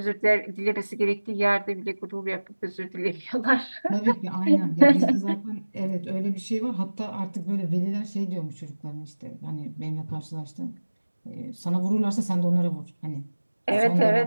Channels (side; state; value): both; inverted; correlation -1.00